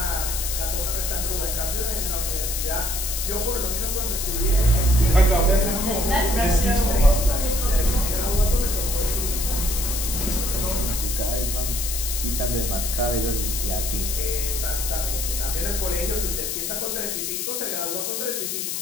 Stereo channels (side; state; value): left; noise; hiss, 2 dB below the sound